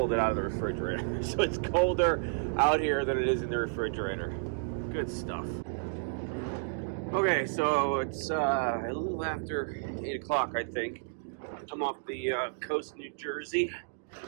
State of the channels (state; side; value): silent; left; digital silence